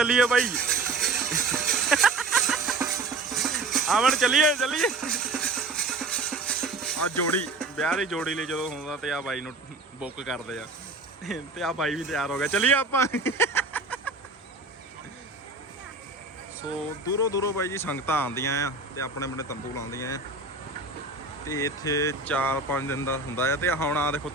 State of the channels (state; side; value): quieter; left; 3.6 dB